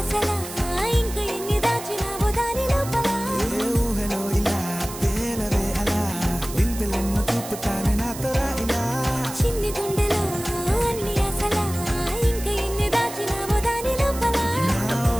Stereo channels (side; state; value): right; noise; hiss, 12 dB below the sound